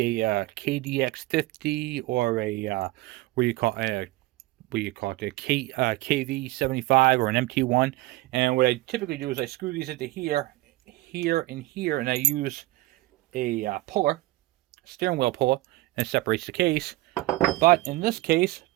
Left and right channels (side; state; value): left; quieter; 18.9 dB